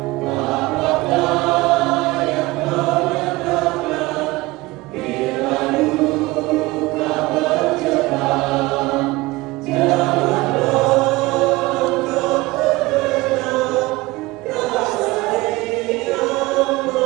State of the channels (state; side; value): quieter; left; 21.0 dB